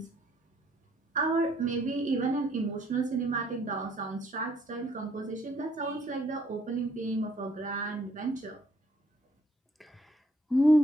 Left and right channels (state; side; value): normal; both; correlation 0.66